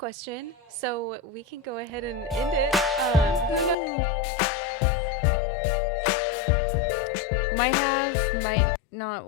so we can go ahead and end it. Who knows what we're gonna do next week? Because we might have, might not.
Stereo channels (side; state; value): right; drops out; at 3.8 s